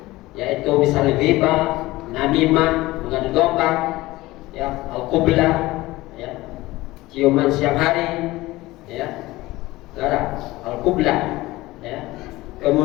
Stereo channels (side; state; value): right; quieter; 18.9 dB